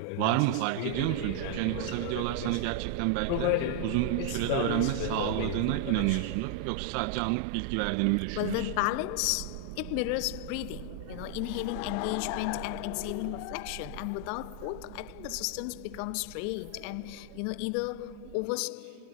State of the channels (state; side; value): different; both; correlation 0.00